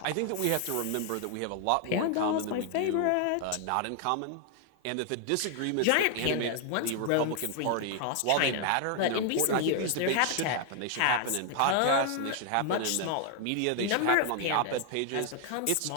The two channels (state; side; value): different; both; correlation 0.00